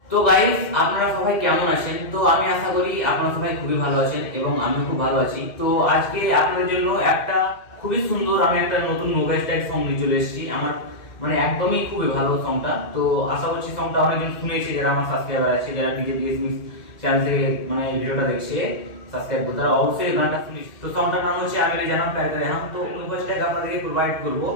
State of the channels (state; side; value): late; right; 2.1 ms